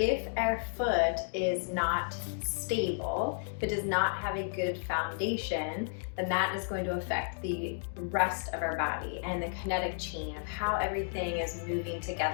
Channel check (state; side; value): silent; right; digital silence